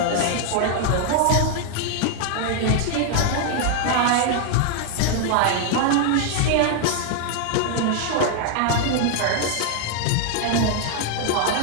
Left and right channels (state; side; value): different; both; correlation 0.00